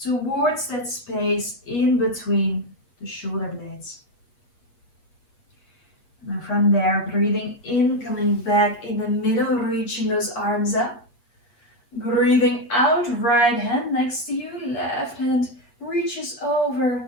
that space in between the shoulder blades. And from there, breathing in, coming back in the middle, reaching those arms up. Breathing out, right hand next to you, left hand reaches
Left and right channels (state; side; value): late; right; 8.4 ms